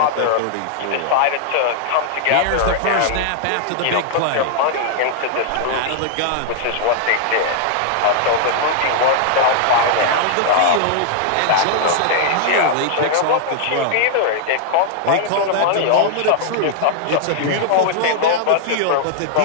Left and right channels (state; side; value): different; both; correlation -0.01